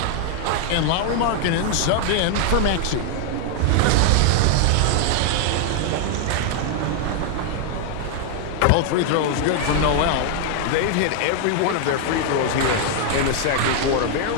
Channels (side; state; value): both; different; correlation 0.00